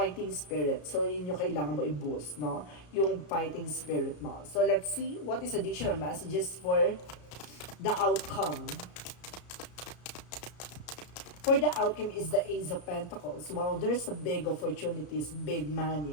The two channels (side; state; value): right; late; 33 ms